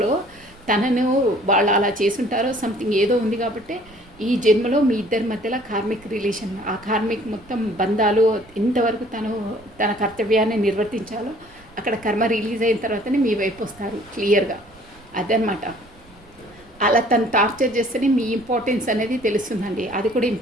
తనను వాళ్ళు అలా చేసుంటారో సంథింగ్ ఏదో ఉంది కాబట్టి ఈ జన్మలో మీ ఇద్దరి మధ్యలో కార్మిక్ రిలేషన్, ఆ కార్మిక్ మొత్తం బంధాలు ఎంతవరకు తన కర్తవ్యాన్ని నిర్వర్తించాలో అక్కడ కర్మ రిలీజ్ అయిన తర్వాతనే మీ వైపు వస్తారు క్లియర్గా. అదనమాట. అలా తను టార్చర్ చేస్తేనే మీ ఇంపార్టెన్స్ అనేది తెలుస్తుందండి. అది కూడా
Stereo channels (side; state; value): right; noise; rumble, 26 dB below the sound